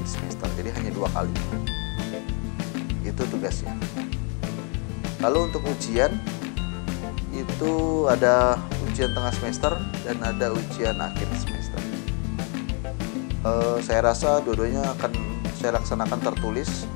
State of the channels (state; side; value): quieter; right; 36.6 dB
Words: semester. Jadi hanya 2 kali. Itu tugasnya. Lalu untuk ujian itu ada ujian tengah semester dan ada ujian akhir semester. Saya rasa dua-duanya akan saya laksanakan tertulis